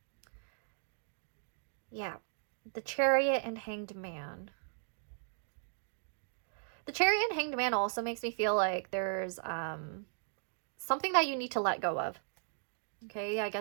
Yeah, the Chariot and Hanged Man. The Chariot and Hanged Man also makes me feel like there's something that you need to let go of. Okay, I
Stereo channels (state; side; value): silent; left; digital silence